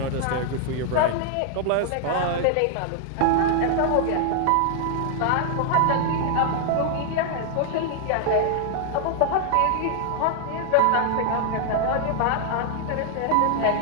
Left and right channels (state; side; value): different; both; correlation 0.00